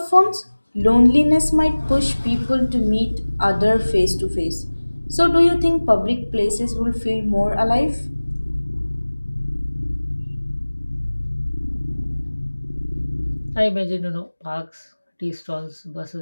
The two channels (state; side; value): inverted; both; correlation -1.00